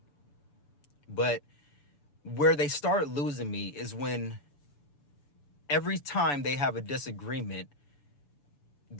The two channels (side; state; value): right; late; 6.9 ms